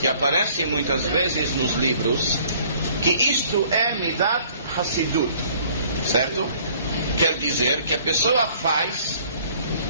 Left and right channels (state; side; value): inverted; both; correlation -0.57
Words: aparece muitas vezes nos livros, que isto é Midat Hassidut, certo? Quer dizer que a pessoa faz